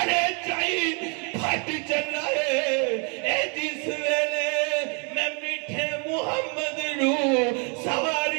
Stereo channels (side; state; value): left; quieter; 36.2 dB